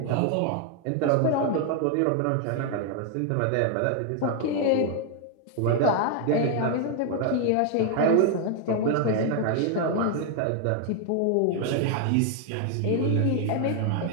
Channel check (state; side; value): different; both; correlation 0.00